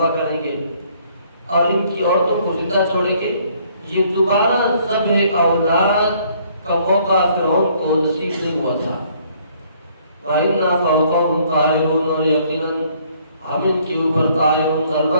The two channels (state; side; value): inverted; both; correlation -0.63